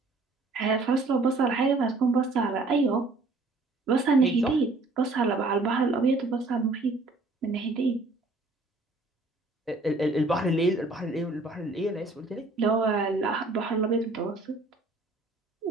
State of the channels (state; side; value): quieter; left; 3.2 dB